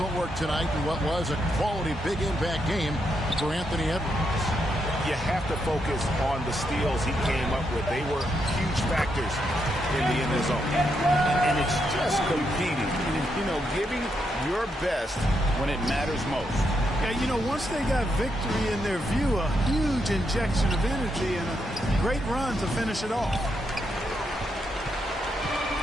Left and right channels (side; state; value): both; normal; correlation 0.80